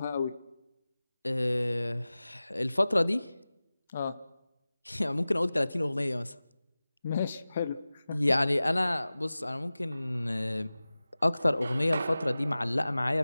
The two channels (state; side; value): inverted; both; correlation -0.97